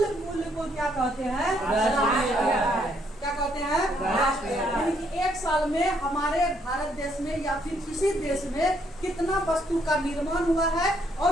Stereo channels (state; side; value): normal; both; correlation 0.70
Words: मूल्य को क्या कहते हैं? क्या कहते हैं? यानी कि एक साल में हमारे भारत देश में या फिर किसी देश में कितना वस्तु का निर्माण हुआ है